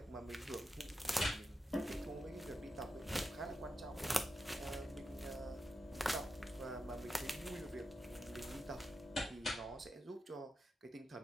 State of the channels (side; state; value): both; normal; correlation 0.89